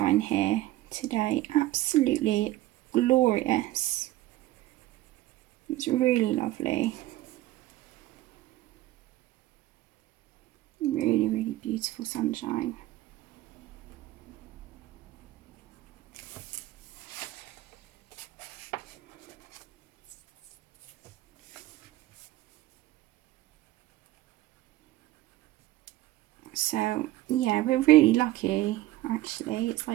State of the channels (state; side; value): quieter; left; 16.2 dB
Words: here today. Absolutely glorious. It's really lovely. Really beautiful sunshine. So yeah, we're really lucky actually. It's